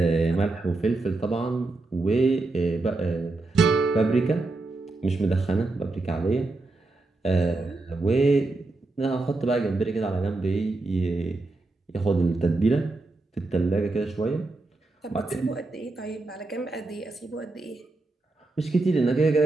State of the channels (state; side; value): quieter; left; 3.2 dB